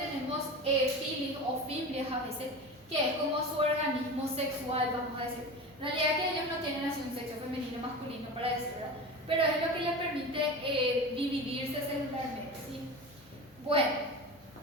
pilis o fimbrias a veces, que es como su organismo sexual, vamos a decir. En realidad que ellos no tienen así un sexo femenino o masculino para decir, ¿verdad? Pero es lo que les permite dividirse celularmente, ¿sí? Bueno,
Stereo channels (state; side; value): normal; both; correlation 0.29